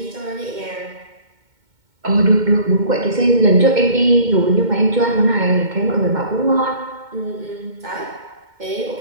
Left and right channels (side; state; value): left; late; 2.2 ms